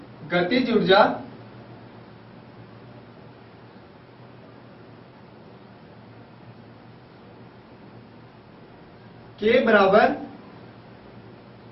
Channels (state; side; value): identical; both; correlation 1.00